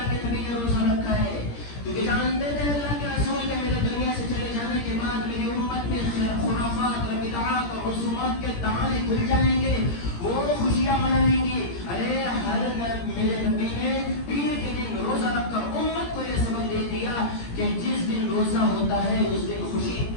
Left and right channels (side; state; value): right; late; 17 ms